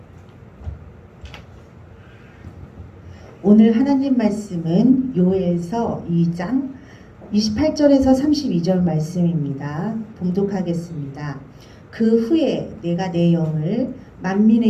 오늘 하나님 말씀은 요엘서 2장 28절에서 32절 말씀입니다. 봉독하겠습니다. 그 후에 내가 내 영을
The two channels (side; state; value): both; identical; correlation 1.00